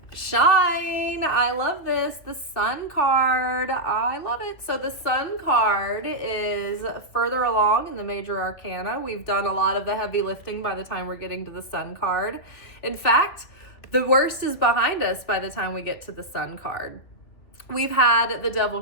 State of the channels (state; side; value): late; right; 2.9 ms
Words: Shine. I love this. The Sun card. I love it. So the Sun card is further along in the major arcana. We've done a lot of the heavy lifting by the time we're getting to the Sun card. In fact, the worst is behind us by the time we get to the Sun card. We've had the Devil